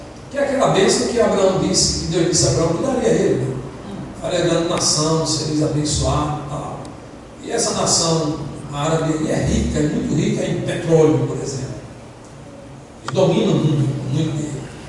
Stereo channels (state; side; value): identical; both; correlation 1.00